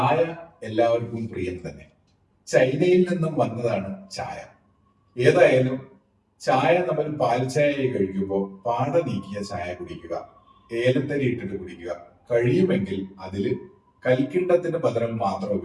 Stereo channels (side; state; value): both; identical; correlation 1.00